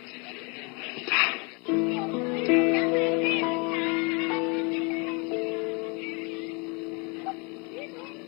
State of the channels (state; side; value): quieter; right; 31.8 dB